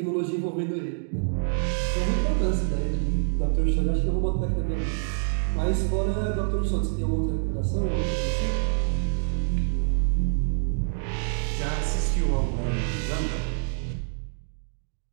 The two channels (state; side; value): silent; left; digital silence